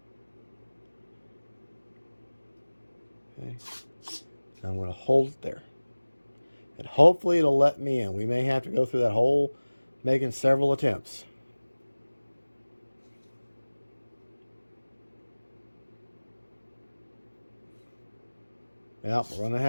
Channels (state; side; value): inverted; both; correlation -1.00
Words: Okay. I'm going to hold it there. And hopefully it'll let me in. We may have to go through that whole making several attempts. Yep, we're going to